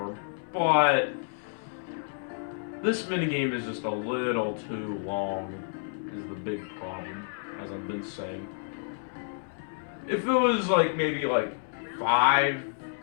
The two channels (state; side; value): silent; right; 58 dB below the other